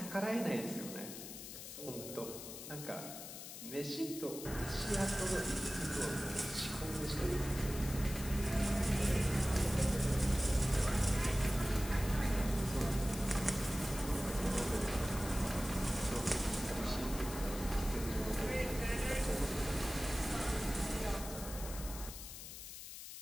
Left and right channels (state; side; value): noise; left; hiss, 10 dB below the sound